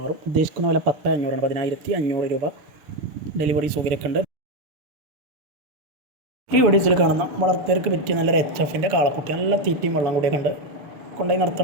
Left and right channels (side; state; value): left; late; 6.7 ms